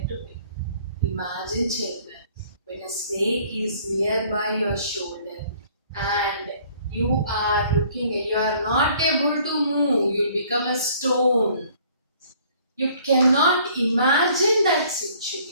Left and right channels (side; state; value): both; inverted; correlation -0.57